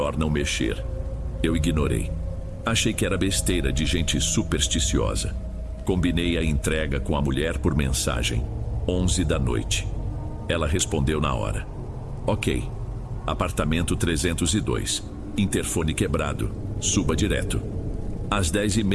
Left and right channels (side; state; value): both; identical; correlation 1.00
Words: não mexer. Eu ignorei. Achei que era besteira de gente supersticiosa. Combinei a entrega com a mulher por mensagem. 11 da noite. Ela respondeu na hora. Ok. Apartamento 302. Interfone quebrado. Suba direto. Às